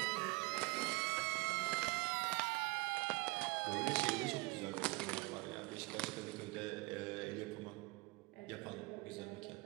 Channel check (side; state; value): left; quieter; 24.5 dB